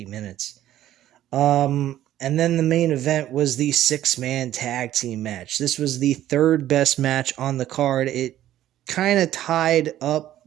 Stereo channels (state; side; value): quieter; left; 12.9 dB